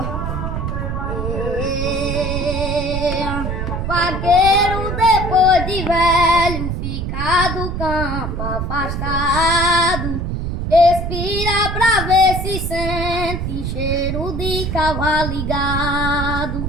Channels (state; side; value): noise; right; rumble, 3 dB below the sound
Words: Vaqueiro depois de velho, fica do campo afastado, expira pra ver se sente cheiro de cavalo ligado.